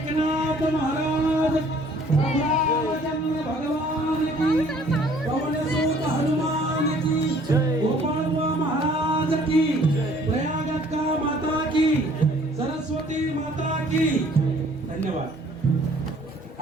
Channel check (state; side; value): normal; both; correlation 0.57